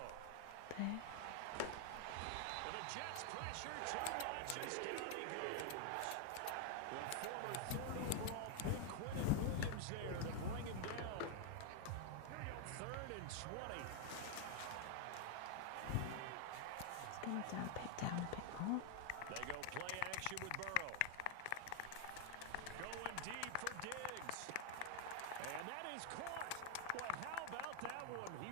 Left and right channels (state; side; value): different; both; correlation 0.00